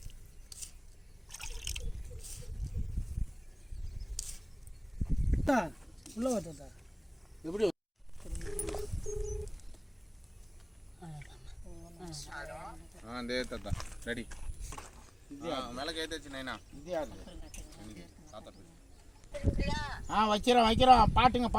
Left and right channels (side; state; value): both; identical; correlation 1.00